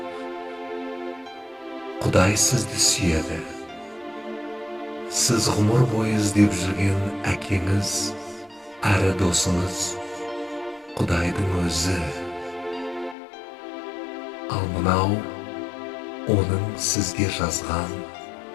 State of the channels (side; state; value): right; drops out; at 13.2 s